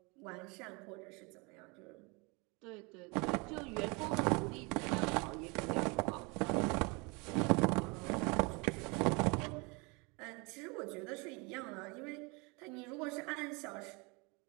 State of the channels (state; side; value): quieter; left; 28.8 dB